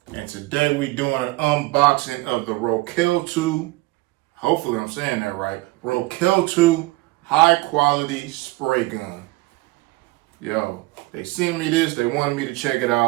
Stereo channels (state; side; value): quieter; left; 21.3 dB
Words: And today we doing an unboxing of the Rokeltu, hopefully I'm saying that right, Rokeltu high quality spray gun. Yo, they sent me this, they wanted me to check it